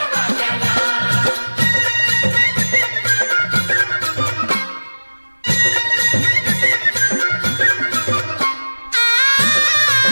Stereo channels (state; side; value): inverted; both; correlation -1.00